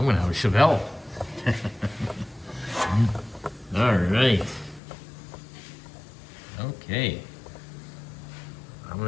have a Chevelle. All right. Okay. I'm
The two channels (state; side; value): drops out; right; at 4.8 s